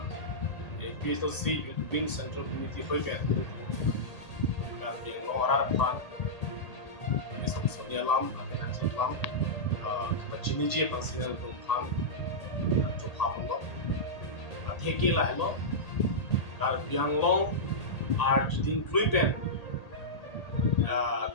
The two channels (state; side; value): late; right; 1.8 ms